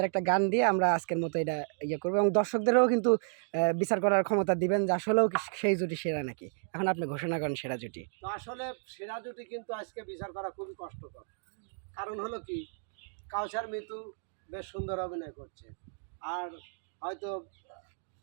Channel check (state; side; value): silent; left; digital silence